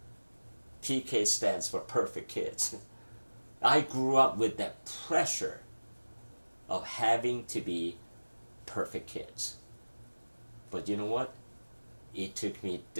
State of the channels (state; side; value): inverted; both; correlation -1.00